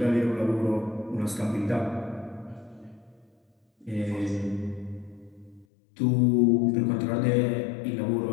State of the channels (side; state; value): right; drops out; at 5.7 s